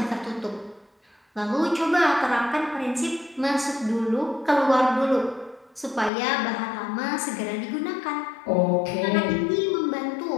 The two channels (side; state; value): right; drops out; at 6.1 s